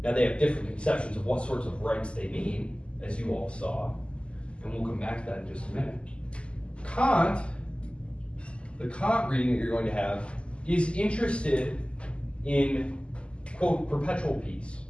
Now they have different conceptions of what sorts of rights they mean, as you all saw, and we'll come back to that in just a minute. Kant, the Kant reading that you're going to have, is interested in, quote, perpetual peace.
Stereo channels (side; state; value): right; late; 0.054 ms